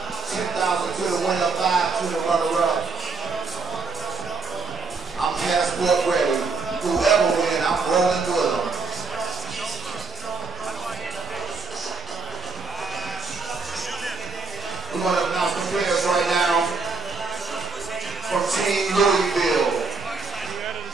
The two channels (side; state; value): left; quieter; 4.0 dB